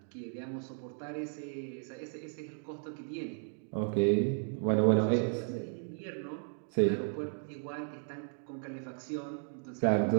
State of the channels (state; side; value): silent; left; 55 dB below the other